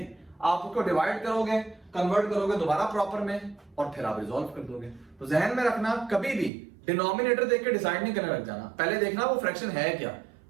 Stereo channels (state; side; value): drops out; left; at 6.5 s